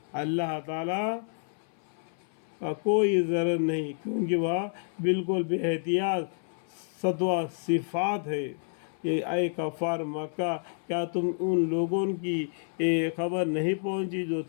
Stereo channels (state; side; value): silent; right; 57 dB below the other